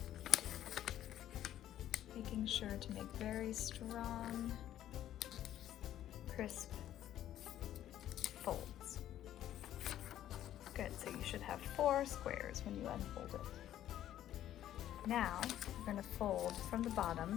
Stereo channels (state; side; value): quieter; right; 12.0 dB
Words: making sure to make very strong, crisp folds. Good, so you should have 4 squares when you unfold it. Now you're going to fold from the